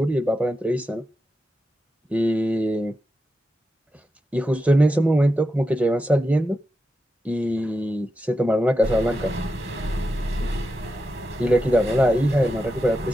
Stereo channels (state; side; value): normal; both; correlation 0.89